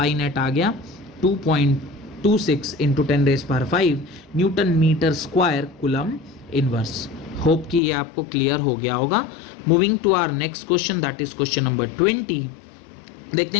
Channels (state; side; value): drops out; right; at 7.8 s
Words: नेट आ गया 2.26 into 10⁵ newton metre square coulomb inverse. Hope कि ये आपको क्लियर हो गया होगा। Moving to our next question, that is question number 20। देखते